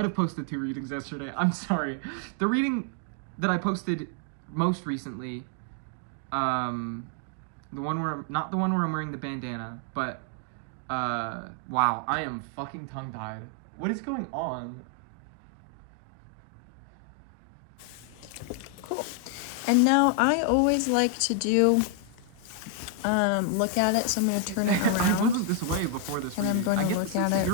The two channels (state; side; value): different; both; correlation 0.00